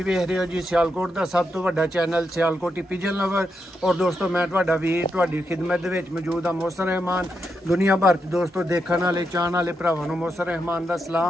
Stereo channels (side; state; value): both; normal; correlation 0.84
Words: वेख रहे हो जी सियालकोट का सब तो वड्डा चैनल सियालकोटी पिजन लवर। और दोस्तों मैं तुहाडा वीर तुहाडी खिदमत दे विच मौजूद हाँ, मोहसन रहमान। दुनिया भर च दोस्तों देखने वाले चाहने वाले भरावां नूं मोहसन रहमान दा